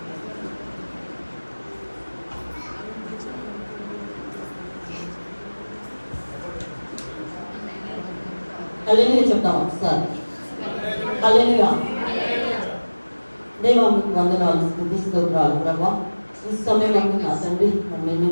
హల్లెలూయా చెప్తాం ఒకసారి. హల్లెలూయా. దేవా మీకు వందనాలు, స్తుతి స్తోత్రాలు ప్రభా. ఈ సమయం నా తండ్రి నేను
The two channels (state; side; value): inverted; both; correlation -1.00